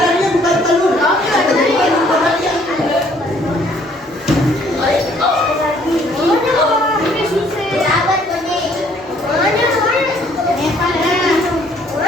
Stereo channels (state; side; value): normal; both; correlation 0.62